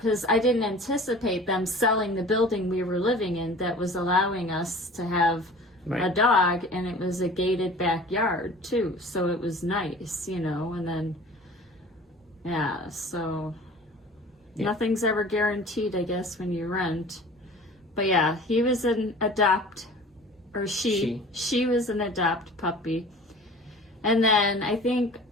I didn't anticipate them selling the building we were living in that was allowing us to have a dog, and it was a gated backyard too, so it was nice, you know. And then so nothing's ever guaranteed, I guess, when you rent. But yeah, he was an she was an adopt puppy. And then I think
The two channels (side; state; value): both; normal; correlation 0.44